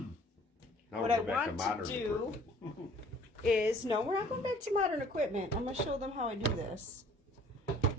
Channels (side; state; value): both; normal; correlation 0.54